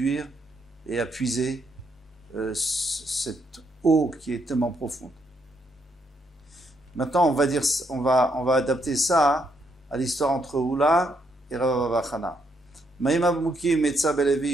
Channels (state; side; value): normal; both; correlation 0.75